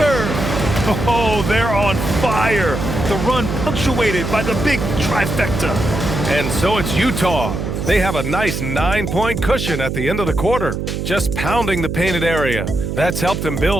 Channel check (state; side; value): noise; right; hum, 3 dB below the sound